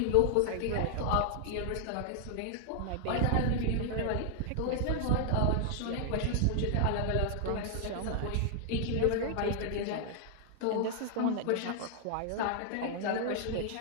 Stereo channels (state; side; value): different; both; correlation 0.00